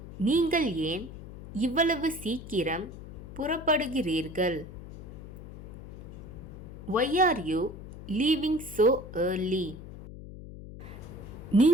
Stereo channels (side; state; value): left; noise; hum, 12 dB below the sound